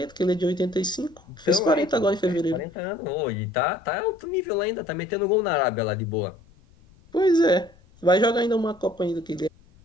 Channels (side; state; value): left; noise; rumble, 27 dB below the sound